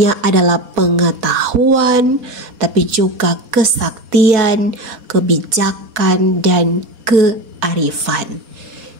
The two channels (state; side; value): late; left; 4.2 ms